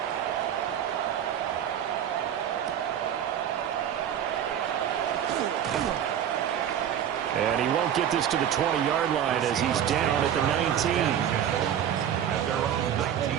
And he won't get this to the 20-yard line as he's down at the 19. At their own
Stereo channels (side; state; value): left; quieter; 9.7 dB